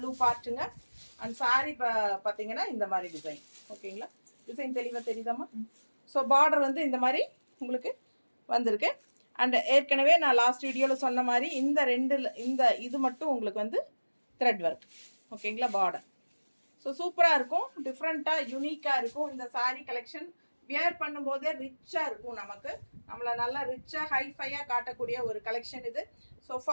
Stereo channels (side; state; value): both; inverted; correlation -1.00